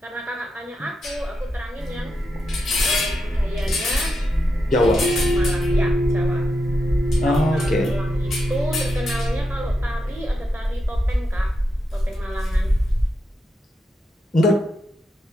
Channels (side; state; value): both; normal; correlation 0.86